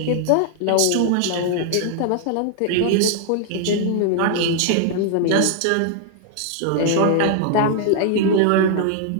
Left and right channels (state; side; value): different; both; correlation 0.00